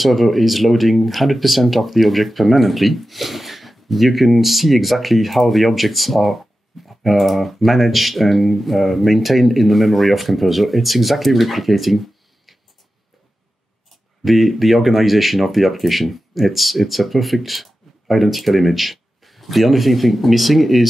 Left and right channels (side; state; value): both; normal; correlation 0.93